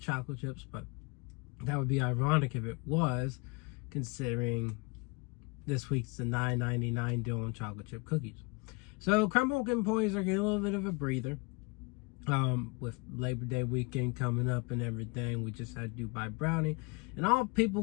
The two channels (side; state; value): right; quieter; 30.0 dB